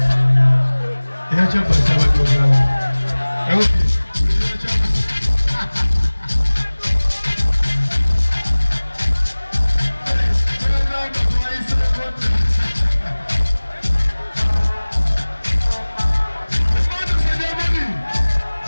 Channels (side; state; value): both; inverted; correlation -1.00